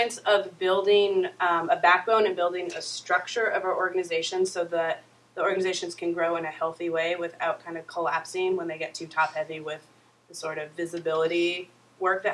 of building a backbone and building a structure of our organization so that the organizations can grow in a healthy way without kind of collapsing when they get too top-heavy with the sort of visibility work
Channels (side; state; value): both; identical; correlation 1.00